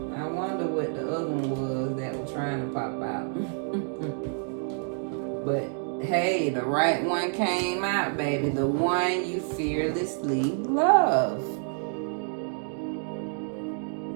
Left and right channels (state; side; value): silent; left; 59 dB below the other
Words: I wonder what the other one was that was trying to pop out. But hey, the right one came out, baby. The one you fearlessly love.